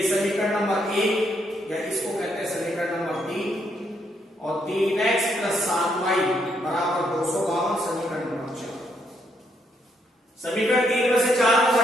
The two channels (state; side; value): normal; both; correlation 0.74